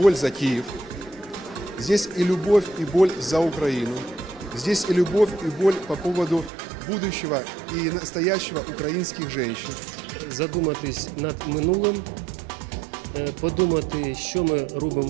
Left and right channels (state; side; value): drops out; left; at 6.5 s